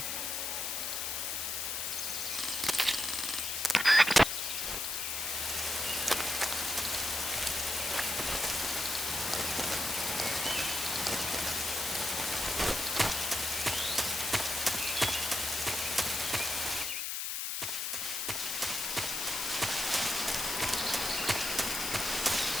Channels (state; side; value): noise; left; hiss, 1 dB below the sound